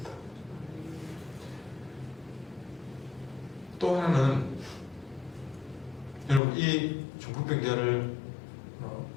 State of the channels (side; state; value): right; drops out; at 6.4 s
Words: 또 하나는 여러분 이 중국 병자를